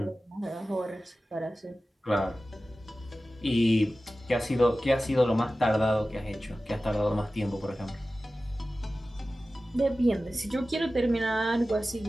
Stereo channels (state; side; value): normal; both; correlation 0.95